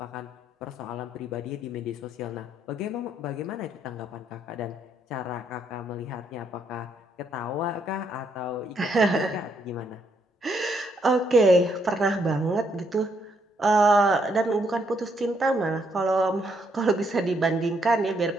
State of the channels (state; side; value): normal; both; correlation 0.73